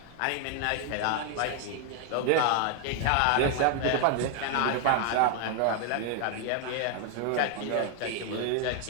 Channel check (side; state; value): both; different; correlation 0.01